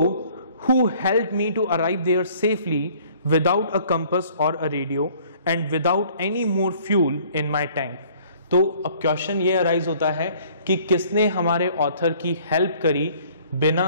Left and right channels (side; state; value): both; inverted; correlation -0.55